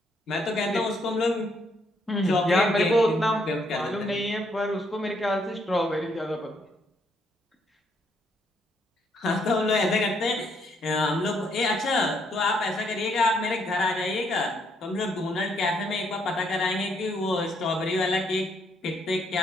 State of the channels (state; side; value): normal; both; correlation 0.72